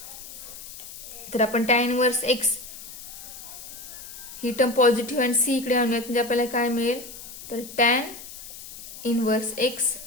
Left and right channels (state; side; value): noise; left; hiss, 13 dB below the sound